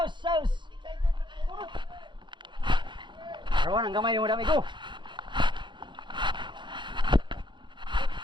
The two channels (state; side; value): late; left; 0.23 ms